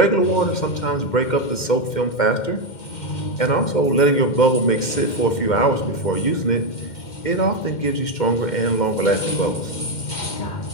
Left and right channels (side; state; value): right; late; 2.1 ms